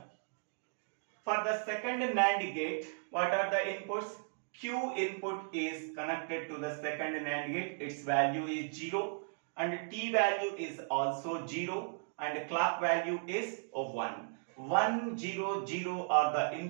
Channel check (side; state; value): left; silent; digital silence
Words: For the second NAND gate, what are the inputs? Q input is connected to the second NAND gate. Its value is 0 and T value is also 0 and clock value is 1. 1, 0, 0 are the